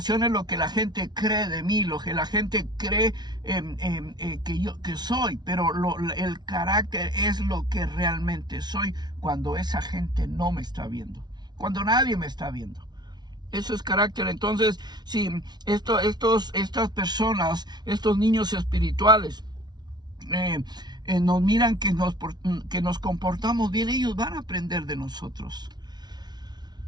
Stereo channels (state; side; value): late; left; 0.20 ms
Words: es lo que la gente cree de mí, lo que la gente cree que soy, pero el carácter es lo que realmente soy cuando esa gente no me está viendo, cuando nadie me está viendo. Eso es carácter. Entonces, si estas personas, estos niños espirituales, nos miran que nos comportamos bien, ellos van a aprender de nosotros.